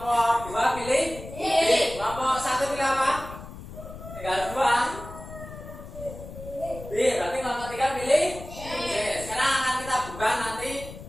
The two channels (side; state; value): left; noise; rumble, 13 dB below the sound